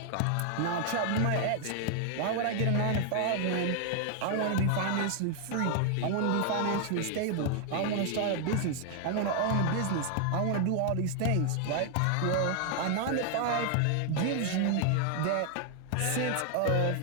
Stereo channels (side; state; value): both; different; correlation 0.00